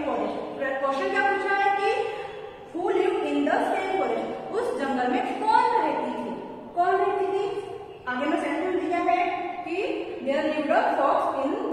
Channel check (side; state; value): both; identical; correlation 1.00